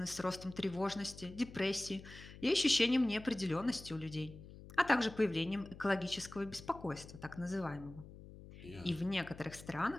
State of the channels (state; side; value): noise; left; hum, 16 dB below the sound